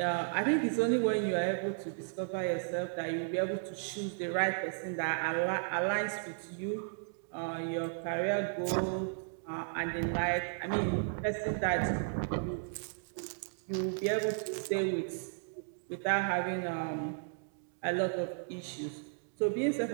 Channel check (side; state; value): left; silent; digital silence